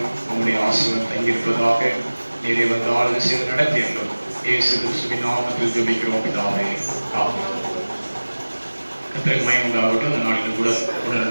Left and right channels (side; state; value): both; inverted; correlation -1.00